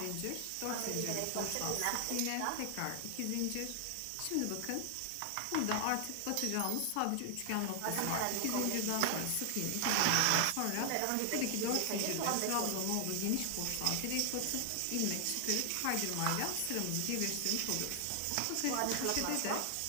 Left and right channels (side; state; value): both; different; correlation 0.00